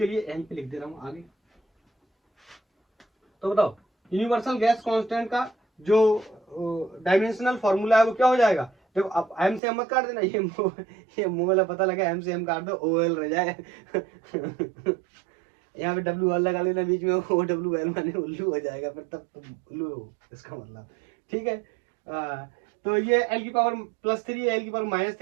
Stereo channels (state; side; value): drops out; left; at 9.6 s